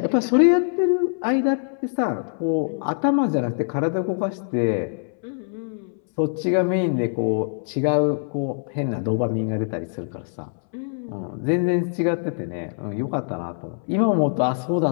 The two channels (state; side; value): silent; right; 63 dB below the other